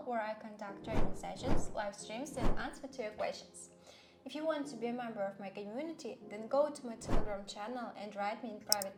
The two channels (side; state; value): both; identical; correlation 1.00